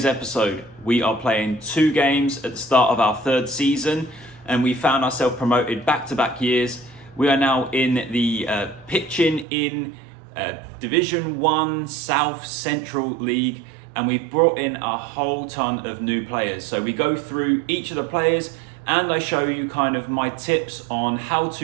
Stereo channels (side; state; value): left; drops out; at 9.5 s